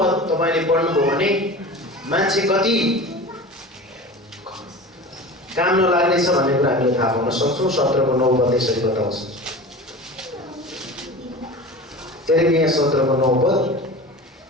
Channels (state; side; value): normal; both; correlation 0.34